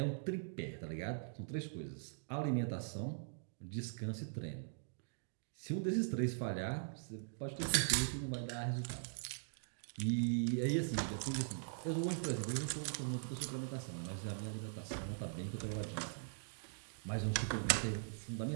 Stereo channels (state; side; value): silent; left; digital silence